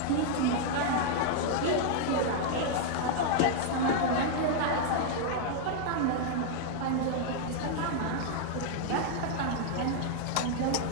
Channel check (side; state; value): both; different; correlation 0.00